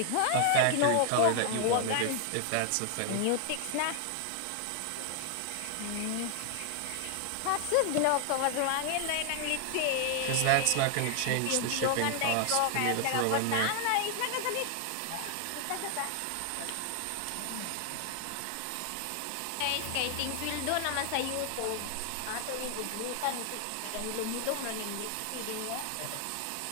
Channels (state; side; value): different; both; correlation 0.00